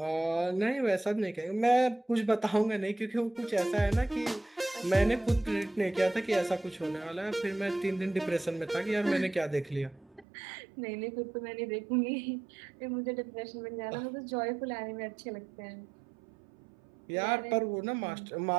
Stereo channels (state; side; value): drops out; left; at 10.2 s